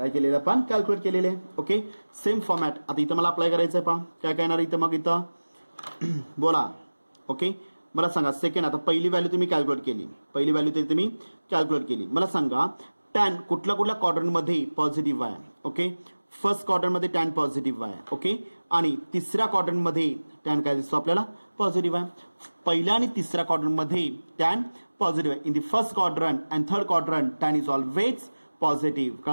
केलेलं आपण? कॅल्क्युलेट केलेले आहे. ओके, सेम फॉर्मॅट आता इथं मला अप्लाय करायचं आहे. पहा काय काय येणार इथं मग इथं बोला. ओके, मला सांगा सेकंड, आता पहिली व्हॅल्यू तुम्ही कॅल्क्युलेट केली, पहिली व्हॅल्यू तरी तुम्ही कॅल्क्युलेट केली. मला सांगा टॅन कुठल्या क्वाड्रंटमध्ये पॉझिटिव्ह आहे? ओके, फर्स्ट क्वाड्रंटमध्ये टॅन पॉझिटिव्ह आहे. ओके, आणि तिसऱ्या क्वाड्रंटमध्ये टॅन काय दिसतो आपल्याला? पॉझिटिव्ह आहे. पहिल्या आणि तिसऱ्या क्वाड्रंटमध्ये टॅन पॉझिटिव्ह आहे. In the first quadrant and third quadrant tan is always positive.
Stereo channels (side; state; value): both; inverted; correlation -1.00